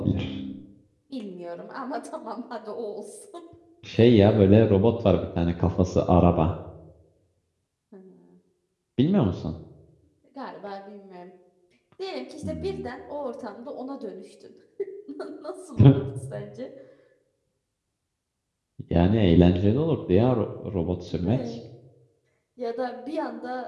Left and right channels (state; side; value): identical; both; correlation 1.00